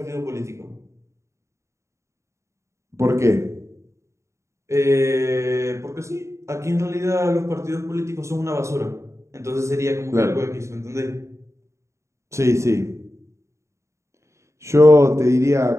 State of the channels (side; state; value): left; late; 0.14 ms